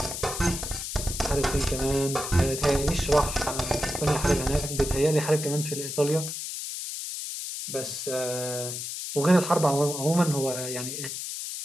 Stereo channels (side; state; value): left; noise; hiss, 6 dB below the sound